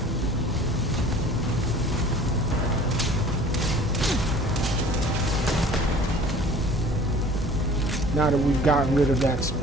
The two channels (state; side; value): normal; both; correlation 0.47